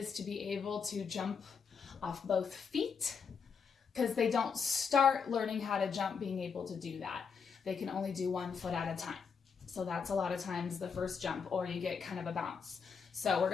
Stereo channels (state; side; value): quieter; right; 6.0 dB